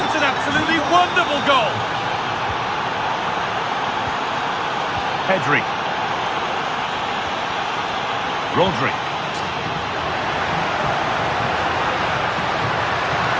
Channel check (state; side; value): identical; both; correlation 1.00